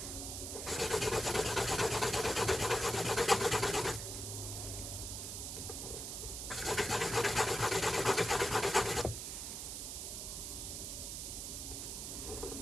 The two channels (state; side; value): noise; right; hiss, 5 dB below the sound